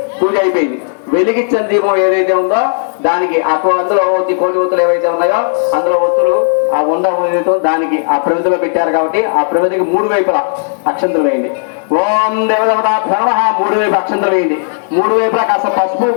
పూజ అయిపోయింది. వెలిగించిన దీపం ఏదైతే ఉందో దానికి అందులో కోటి ఒత్తులు ఏవైతే ఉన్నాయో అందులో ఒత్తులు ఆ ఉండ ఏదైతే దానికి ఆ ప్రమిదలో పెట్టారు కాబట్టి ఆ ప్రమిదకి మూడు వైపులా అక్షంతలు వేయండి. ఓం దేవదేవతాభ్యో నమః. మూడు వైపు అక్షంతలు వేయండి. మూడు వైపులా కాస్త పసుపు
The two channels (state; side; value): silent; right; digital silence